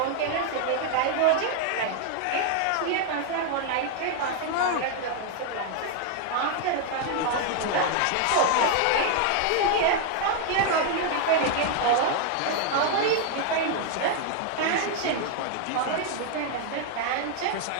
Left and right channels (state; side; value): different; both; correlation 0.00